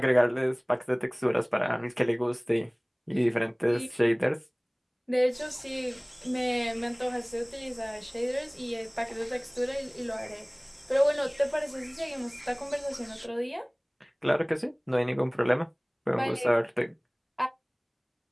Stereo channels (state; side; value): identical; both; correlation 1.00